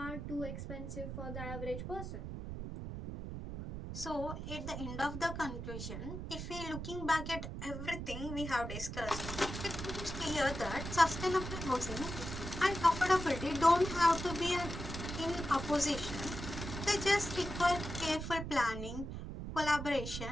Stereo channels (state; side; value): noise; right; rumble, 7 dB below the sound